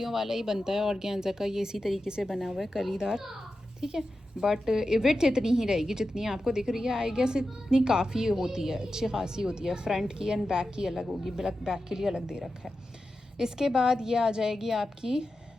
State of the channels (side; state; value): both; normal; correlation 0.91